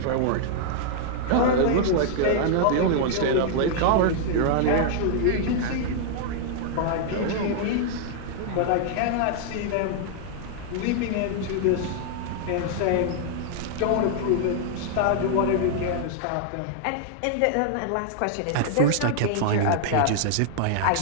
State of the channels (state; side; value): different; both; correlation -0.01